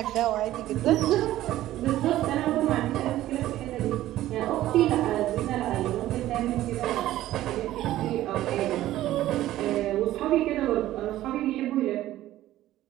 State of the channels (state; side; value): quieter; left; 14.4 dB